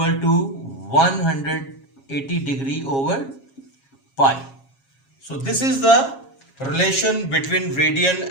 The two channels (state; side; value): late; right; 7.4 ms